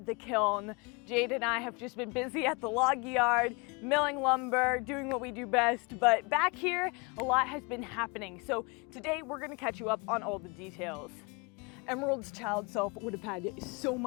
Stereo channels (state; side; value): quieter; right; 29.2 dB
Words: the kiln. Jade and I have just been busy at the log yard, milling lumber, doing what we do best, but back here, a lot has been happening. So today we're gonna catch you up on all the details. Emerald's child self would have had so